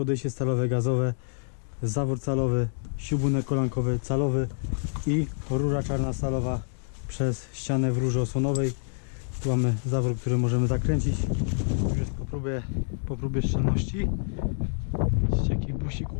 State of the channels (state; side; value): silent; right; digital silence